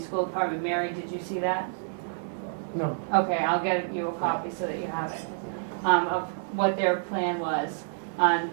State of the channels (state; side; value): silent; left; digital silence